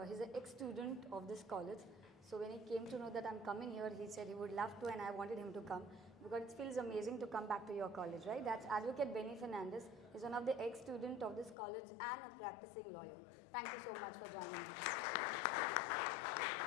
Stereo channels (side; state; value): right; drops out; at 11.6 s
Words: He's an ex-student of this college. So when he came to know that I'm coming here, he said he would love to, and I wanted him to come because it feels amazing to come back to your college, right? That's Advocate Benny Fernandez. He's one of the ex-student of this college and a practicing lawyer. Thank you so much for joining us.